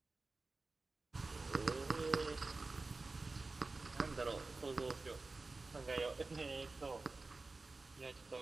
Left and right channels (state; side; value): quieter; left; 3.5 dB